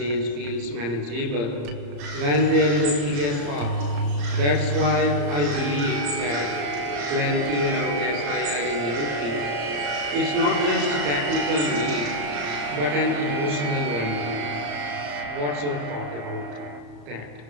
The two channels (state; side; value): late; left; 35 ms